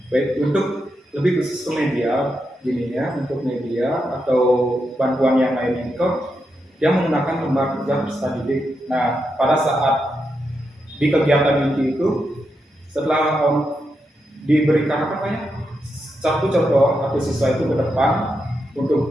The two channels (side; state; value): both; normal; correlation 0.85